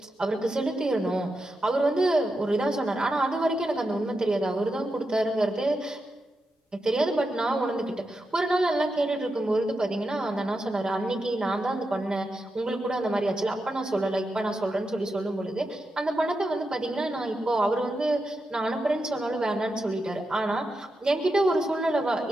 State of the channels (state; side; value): normal; both; correlation 0.87